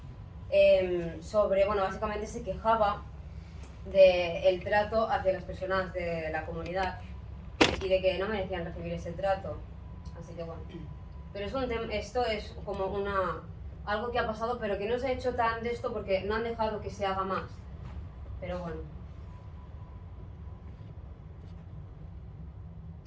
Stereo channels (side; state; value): both; identical; correlation 1.00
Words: sobre, bueno, básicamente se quejaba del trato hacia las personas de la comunidad y de que no merecían recibir ese trato, así que bueno. Pero esto es como algo que ha pasado, pero que no se ha hecho tan de esto porque no han dejado que se haga más, pero bueno.